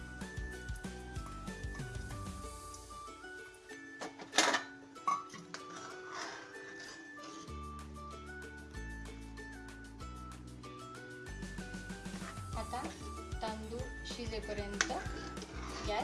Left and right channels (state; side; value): identical; both; correlation 1.00